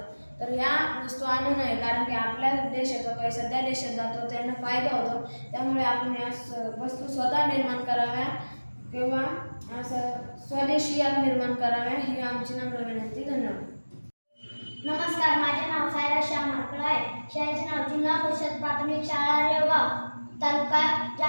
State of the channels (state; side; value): inverted; both; correlation -1.00